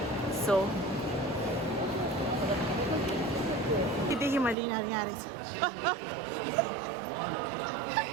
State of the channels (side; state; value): left; drops out; at 4.5 s